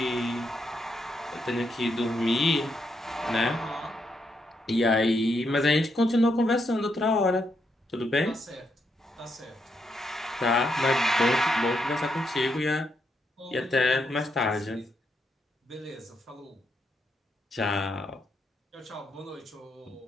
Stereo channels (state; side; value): normal; both; correlation 0.80